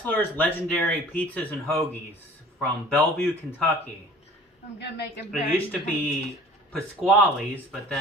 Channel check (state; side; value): normal; both; correlation 0.46